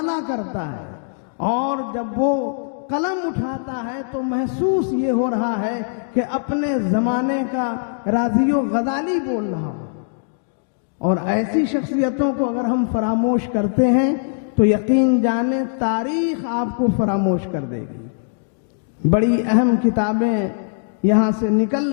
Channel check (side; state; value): right; silent; digital silence